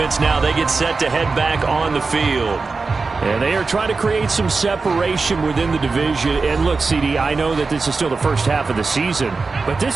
now, they get set to head back on the field. And they are trying to create some separation within the division. And look, CD, I know that this is still the first half of the season, but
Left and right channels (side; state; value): left; quieter; 4.2 dB